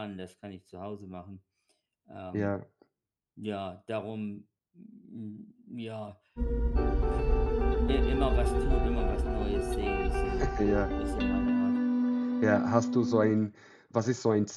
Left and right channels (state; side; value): identical; both; correlation 1.00